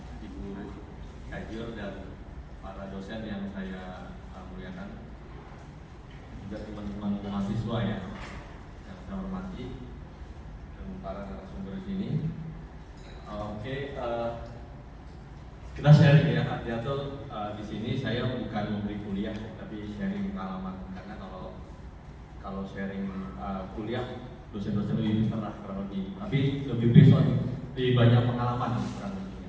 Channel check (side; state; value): both; identical; correlation 1.00